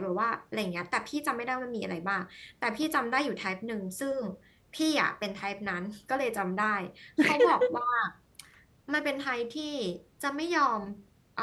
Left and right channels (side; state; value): both; identical; correlation 1.00